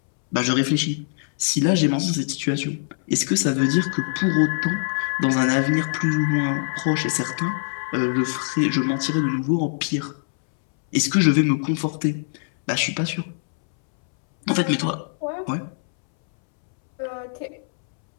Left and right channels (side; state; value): right; silent; 64 dB below the other